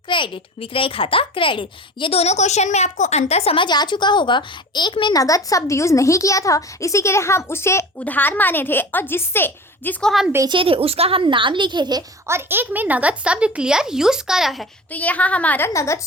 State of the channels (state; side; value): normal; both; correlation 0.35